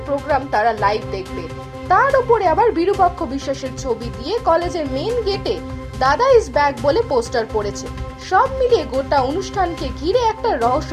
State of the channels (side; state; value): both; identical; correlation 1.00